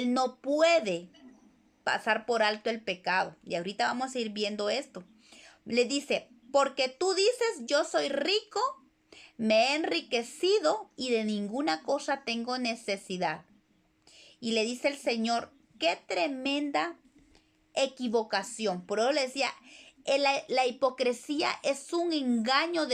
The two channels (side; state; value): both; identical; correlation 1.00